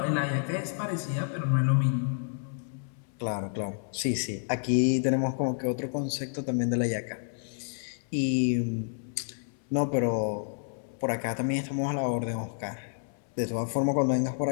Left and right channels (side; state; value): right; silent; 58 dB below the other